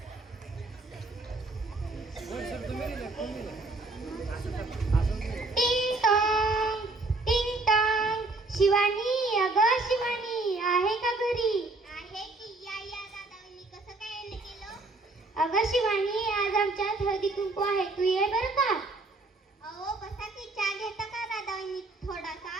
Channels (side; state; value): left; quieter; 3.1 dB